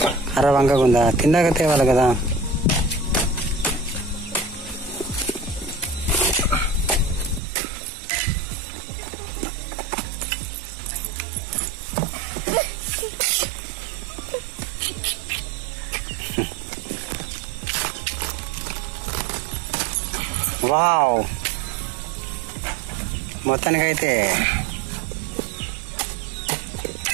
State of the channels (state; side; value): drops out; left; at 7.4 s